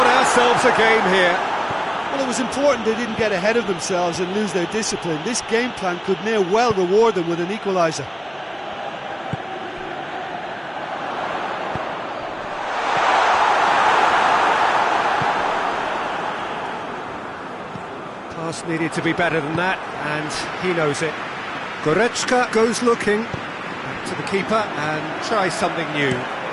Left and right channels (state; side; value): identical; both; correlation 1.00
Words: ourselves a game here. Well, it was important they didn't get ahead of themselves and lose their discipline. This game plan could now well reward them with an equaliser. Pass needed to be better than that, and he knows it. Goretzka goes looking back to the keeper and tries something new.